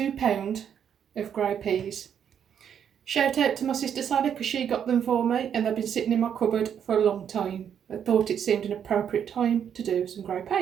of grey peas. Shout out to my sister Sally because she got them for me and they've been sitting in my cupboard for a long time. I thought it seemed an appropriate time to do some grey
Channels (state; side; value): quieter; left; 8.5 dB